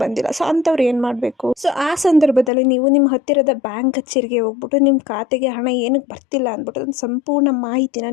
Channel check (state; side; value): drops out; right; at 2.5 s